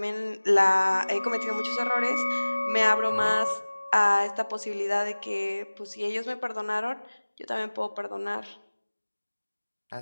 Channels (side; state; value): both; inverted; correlation -1.00